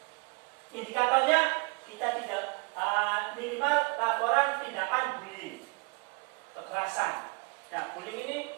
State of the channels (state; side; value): quieter; left; 30.9 dB